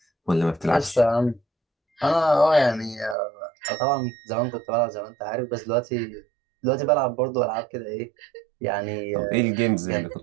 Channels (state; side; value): drops out; left; at 3.2 s